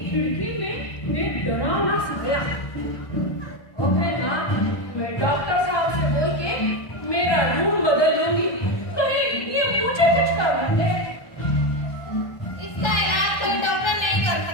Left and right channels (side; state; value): right; late; 1.3 ms